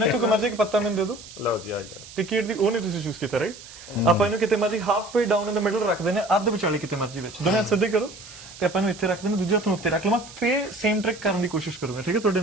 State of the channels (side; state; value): right; noise; hiss, 17 dB below the sound